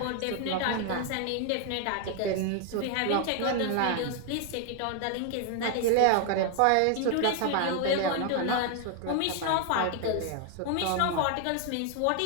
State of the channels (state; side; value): different; both; correlation 0.00